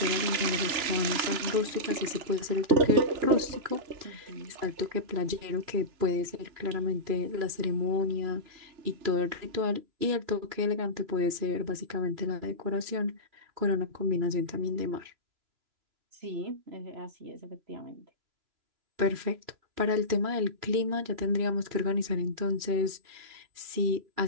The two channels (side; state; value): left; late; 3.0 ms